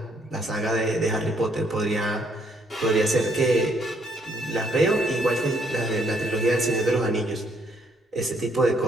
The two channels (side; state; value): both; normal; correlation 0.68